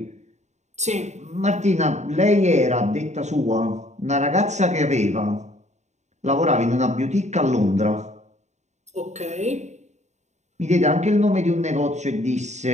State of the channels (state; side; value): late; left; 0.34 ms